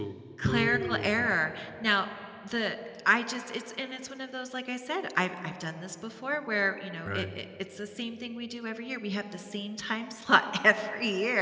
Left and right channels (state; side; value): identical; both; correlation 1.00